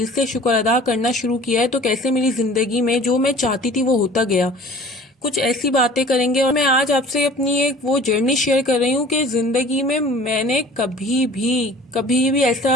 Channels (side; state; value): both; normal; correlation 0.46